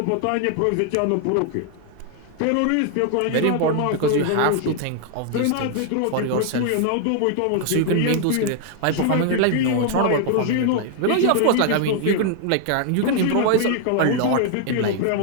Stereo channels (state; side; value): different; both; correlation 0.00